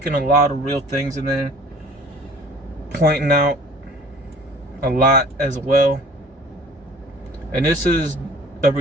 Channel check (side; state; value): both; normal; correlation 0.49